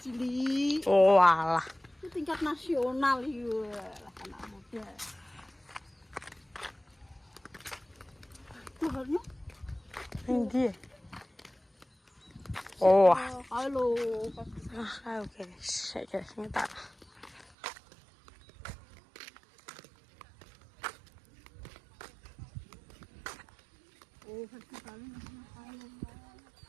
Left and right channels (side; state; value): left; drops out; at 17.5 s